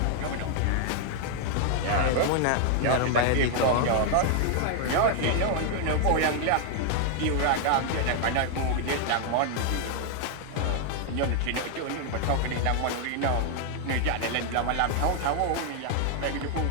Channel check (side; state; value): both; different; correlation 0.00